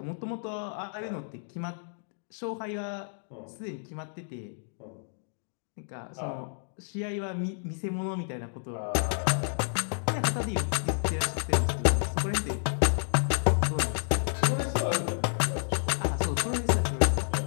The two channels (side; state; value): right; silent; digital silence